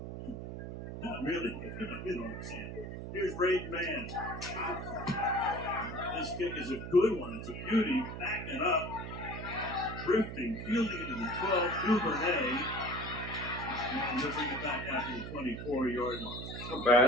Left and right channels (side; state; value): right; noise; hum, 7 dB below the sound